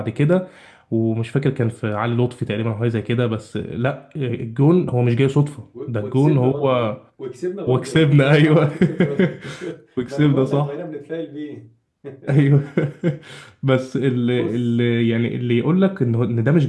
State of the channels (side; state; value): both; identical; correlation 1.00